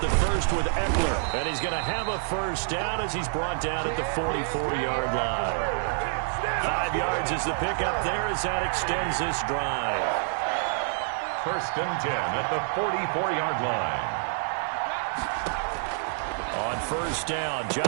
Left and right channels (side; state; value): left; silent; 60 dB below the other